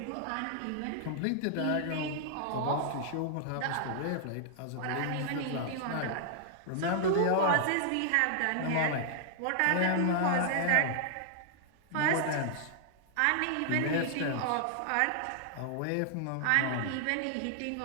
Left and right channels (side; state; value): both; different; correlation -0.01